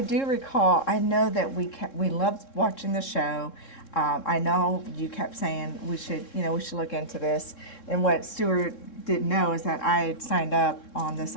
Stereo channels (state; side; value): late; right; 3.7 ms